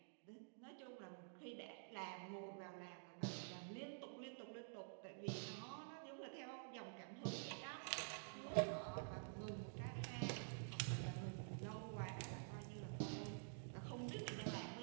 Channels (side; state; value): left; silent; digital silence